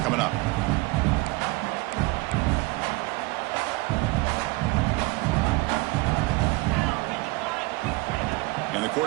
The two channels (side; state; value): left; quieter; 23.3 dB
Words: up. And the